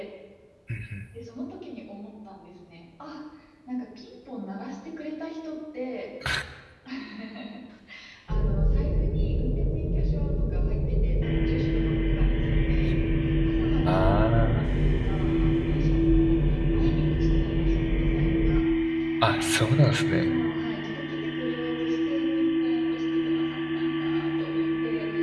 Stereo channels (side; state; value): both; identical; correlation 1.00